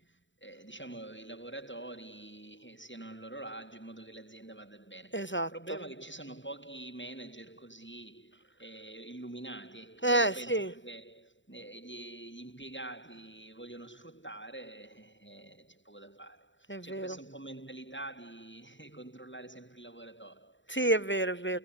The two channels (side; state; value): right; late; 0.54 ms